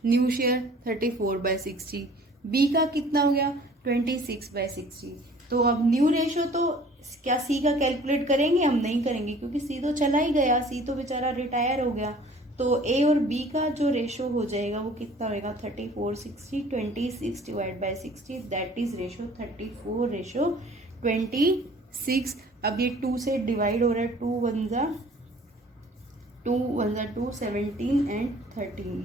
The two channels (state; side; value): normal; both; correlation 0.51